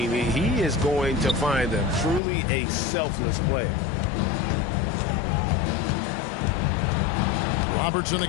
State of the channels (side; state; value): right; drops out; at 2.2 s